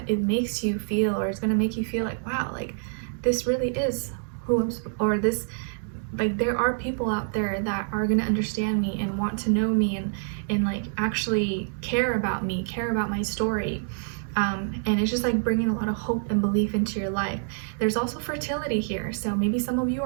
makes you feel, or it's gonna make you feel like, wow, like this really is who I'm, or this, like there are people out there that are gonna understand me and want to know me, and like actually care about me, care about my story. And it's just like bringing a lot of hope and belief into your life. There's also fertility here, so maybe some of you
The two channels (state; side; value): silent; left; digital silence